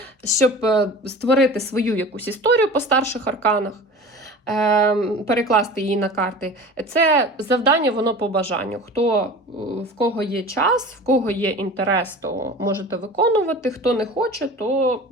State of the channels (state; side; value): normal; both; correlation 0.37